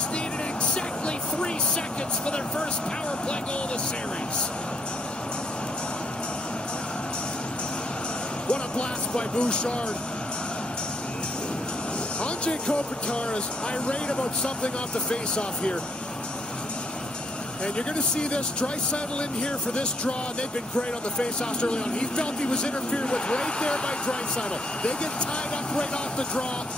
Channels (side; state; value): both; normal; correlation 0.72